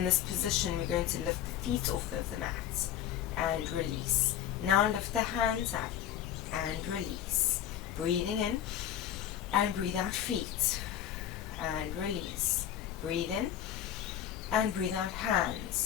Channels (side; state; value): right; quieter; 10.6 dB